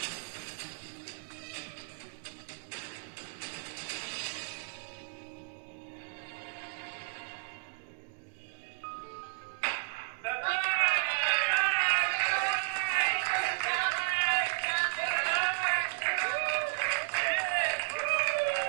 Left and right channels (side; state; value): left; silent; digital silence